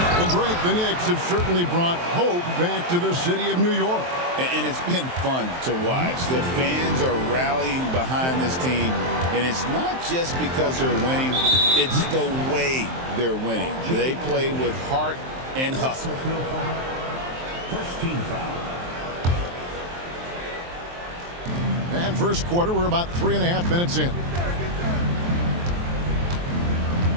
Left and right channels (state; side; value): late; left; 23 ms